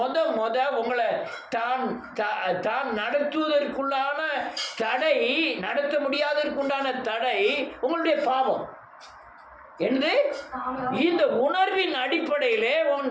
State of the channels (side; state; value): both; identical; correlation 1.00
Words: உங்களை தான் நடத்துவதற்குள்ளான தடை, நடத்த முடியாததற்குண்டான தடை உங்களுடைய பாவம். என்று இந்த உணர்வின் அடிப்படையிலே உன்